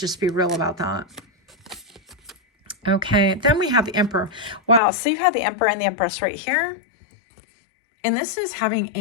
just be real about that. Okay, then we have the Emperor. Wow, so you have the Emperor and the Empress right here. And this is having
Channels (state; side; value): drops out; right; at 4.8 s